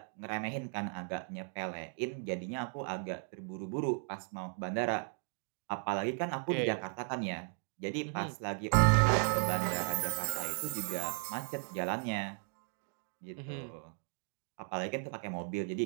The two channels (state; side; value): silent; left; 54 dB below the other